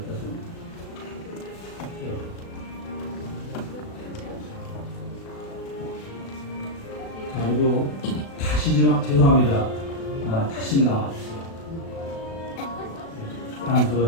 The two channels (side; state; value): right; late; 36 ms